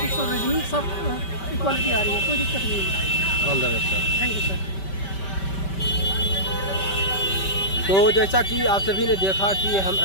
और रीजनिंग सब इक्वलिटी आ रही है, कोई दिक्कत नहीं है। All the best sir. Thank you sir. तो जैसा कि आप सभी ने देखा कि हम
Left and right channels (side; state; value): right; late; 5.2 ms